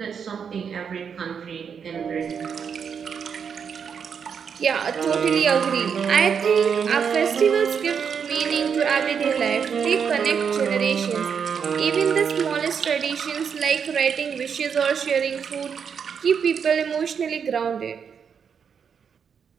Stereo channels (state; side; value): quieter; left; 6.9 dB